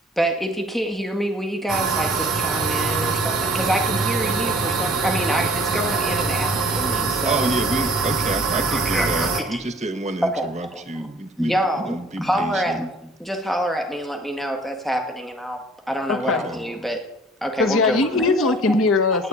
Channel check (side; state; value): both; normal; correlation 0.52